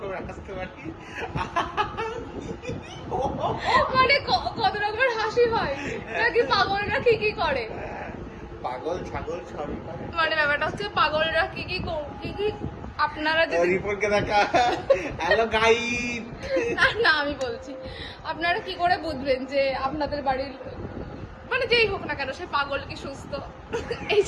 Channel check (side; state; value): both; identical; correlation 1.00